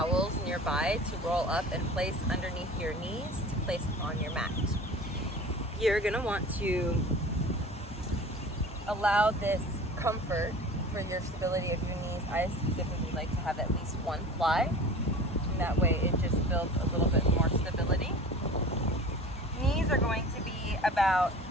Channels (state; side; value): normal; both; correlation 0.40